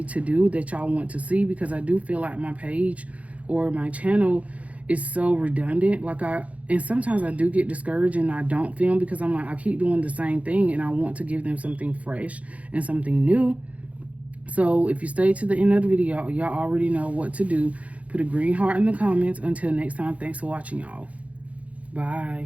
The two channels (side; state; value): left; late; 0.066 ms